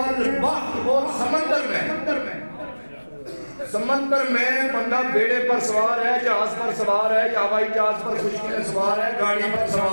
اور سمندر میں بندہ بیڑے پر سوار ہے، جہاز پر سوار ہے، یا ہوائی جہاز پر خشکی میں سوار ہے، گاڑی پر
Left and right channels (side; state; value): both; inverted; correlation -1.00